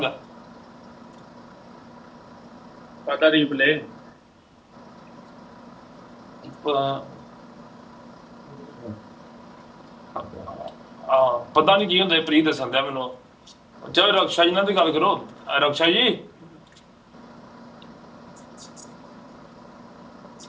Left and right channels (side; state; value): both; identical; correlation 1.00